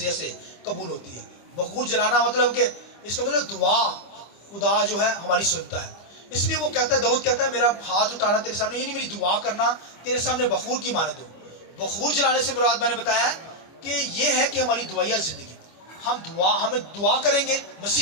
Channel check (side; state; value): right; late; 25 ms